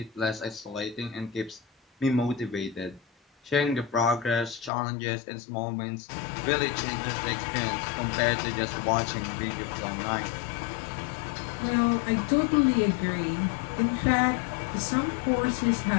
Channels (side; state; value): right; drops out; at 4.7 s